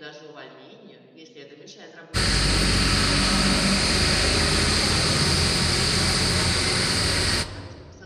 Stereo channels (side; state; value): both; identical; correlation 1.00